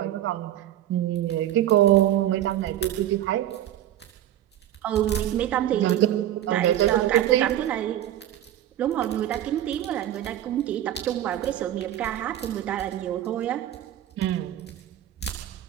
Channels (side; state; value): left; quieter; 12.3 dB